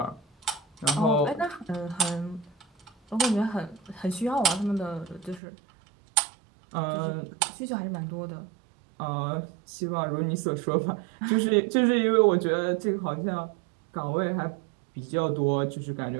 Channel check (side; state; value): left; drops out; at 5.4 s